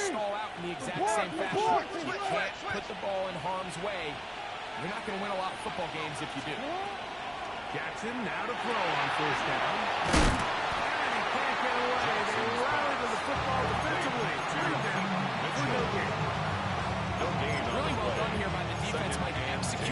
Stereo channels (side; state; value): both; identical; correlation 1.00